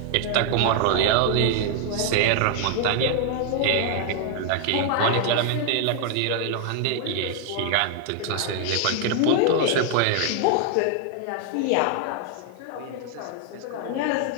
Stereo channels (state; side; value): different; both; correlation 0.00